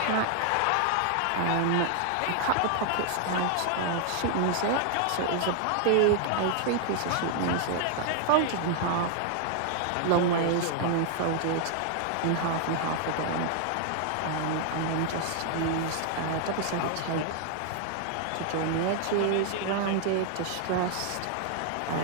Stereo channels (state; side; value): different; both; correlation 0.00